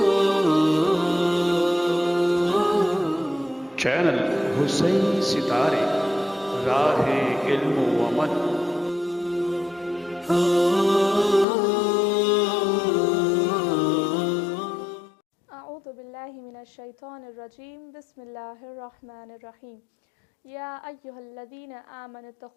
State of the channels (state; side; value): drops out; right; at 11.5 s